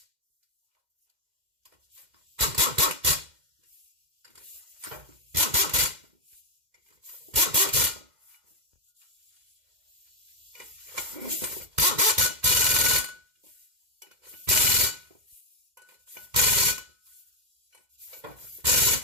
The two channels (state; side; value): late; left; 2.1 ms